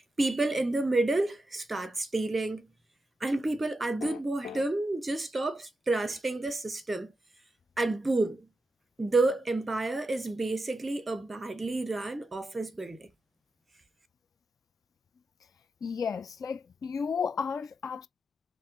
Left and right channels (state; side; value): normal; both; correlation 0.88